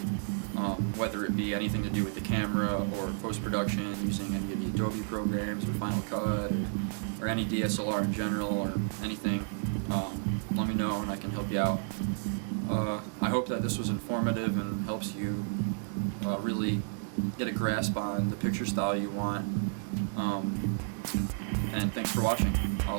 whether it be anything to do with the camera or post-production using any of the Adobe programs or Final Cut, or any DSLR in general, or anything. Let me know and I can help you out. I hope that this was informative and helps you really get a grasp on the picture style you want. And thanks for watching.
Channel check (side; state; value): left; silent; digital silence